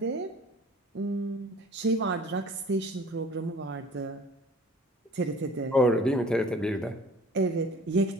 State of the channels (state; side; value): normal; both; correlation 0.48